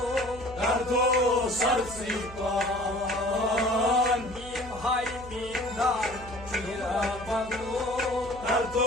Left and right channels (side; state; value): right; noise; hum, 15 dB below the sound